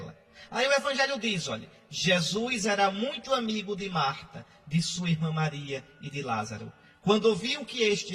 Aí o Evangelho diz, olha, Jesus era muito amigo de Marta, de sua irmã Maria e de Lázaro. Quando ouviu que este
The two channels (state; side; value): identical; both; correlation 1.00